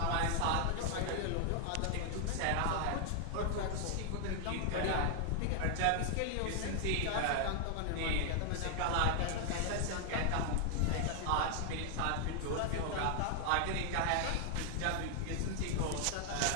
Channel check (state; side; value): different; both; correlation 0.00